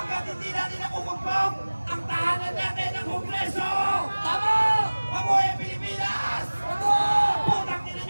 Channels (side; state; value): both; inverted; correlation -1.00